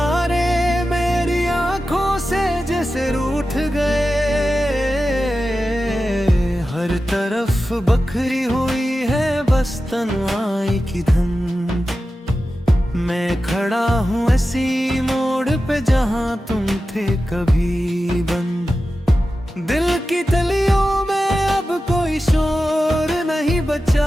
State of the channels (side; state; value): both; normal; correlation 0.93